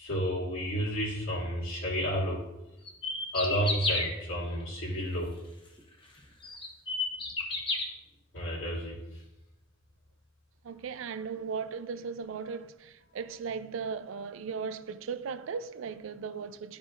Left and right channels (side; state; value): both; normal; correlation 0.20